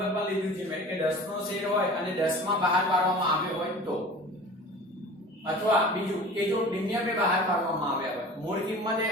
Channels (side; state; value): both; normal; correlation 0.40